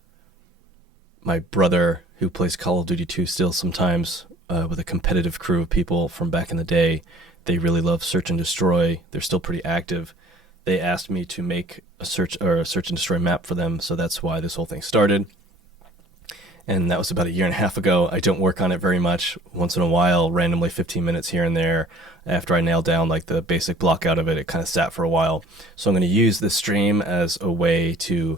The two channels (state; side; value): normal; both; correlation 0.52